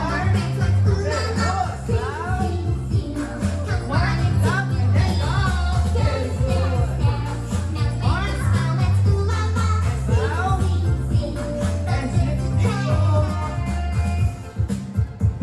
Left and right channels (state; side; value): identical; both; correlation 1.00